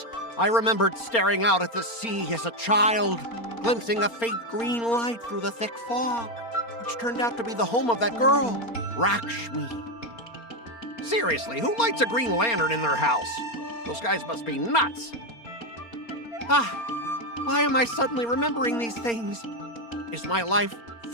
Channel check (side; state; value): right; late; 4.3 ms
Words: I remembered staring out at the sea as a child, glimpsing a faint green light through the thick fog, which turned out to be the home of that girl, Rakshmi. Seriously, who lights a green lantern in their house? Those guys must be nuts. Why am I suddenly remembering these things? Is my life